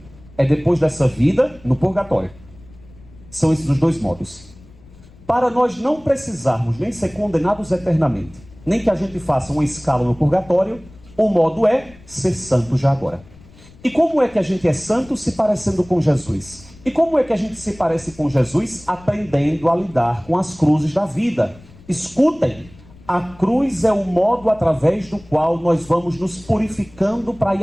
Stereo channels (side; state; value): left; noise; rumble, 23 dB below the sound